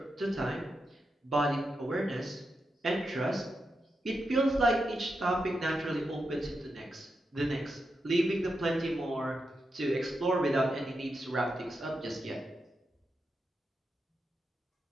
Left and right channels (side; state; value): both; normal; correlation 0.86